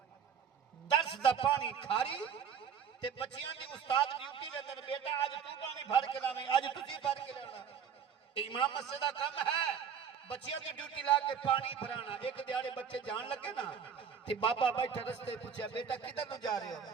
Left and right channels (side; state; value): left; quieter; 7.5 dB